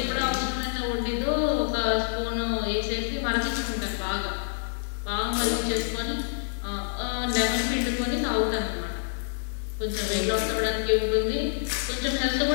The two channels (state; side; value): silent; right; digital silence